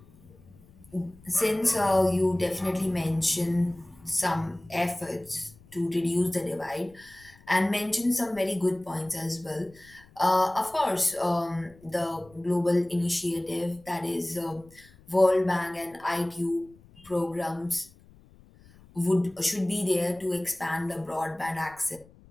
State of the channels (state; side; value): noise; left; rumble, 26 dB below the sound